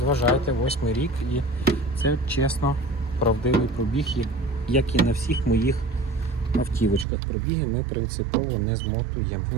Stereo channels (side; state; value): left; drops out; at 7.1 s